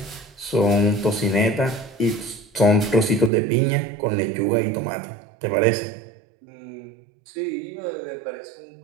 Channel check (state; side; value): drops out; left; at 3.3 s